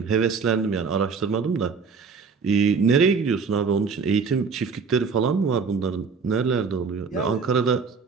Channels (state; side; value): quieter; left; 5.2 dB